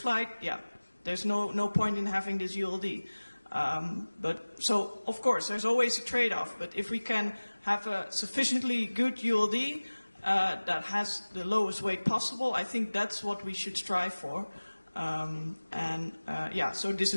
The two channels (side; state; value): both; inverted; correlation -1.00